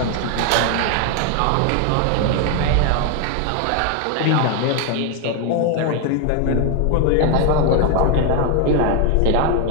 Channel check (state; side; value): different; both; correlation 0.01